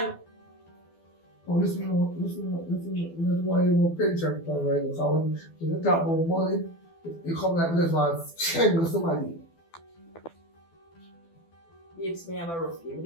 listen. That's why you want pension plan right now. Because when you talk about money, you come like this one, change somebody. Babes, me have a rough game.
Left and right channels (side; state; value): right; late; 12 ms